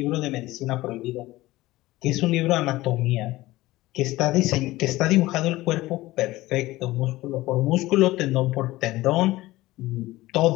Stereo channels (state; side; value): quieter; right; 18.1 dB